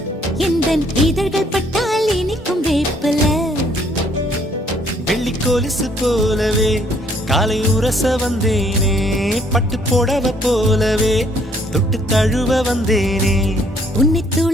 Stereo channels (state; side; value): normal; both; correlation 0.65